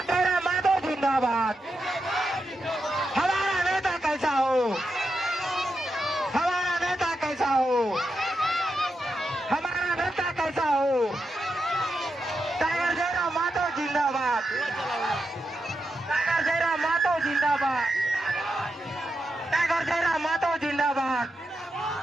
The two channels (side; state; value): both; normal; correlation 0.86